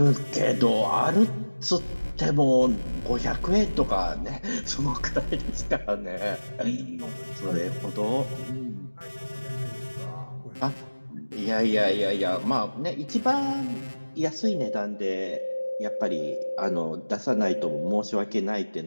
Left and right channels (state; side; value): inverted; both; correlation -1.00